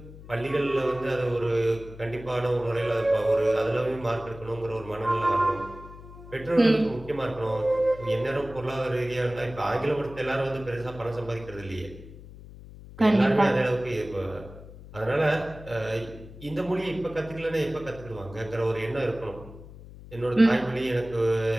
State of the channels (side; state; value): left; noise; hum, 17 dB below the sound